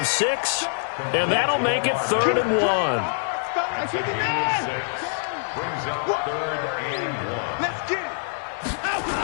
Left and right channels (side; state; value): right; silent; digital silence